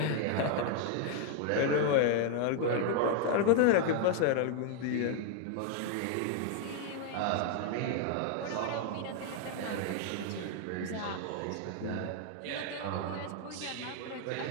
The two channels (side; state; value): both; different; correlation 0.00